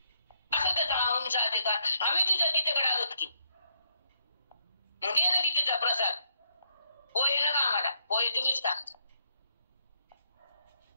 असं त्याचा आमचा अधिकार. आम्ही तुझ्या गीतेकडे आलोत की, मग ये ना गीतेचा प्रसाद. पोहे ना का आम्हाला, पोहे तुम्हीच का,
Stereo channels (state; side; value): inverted; both; correlation -0.73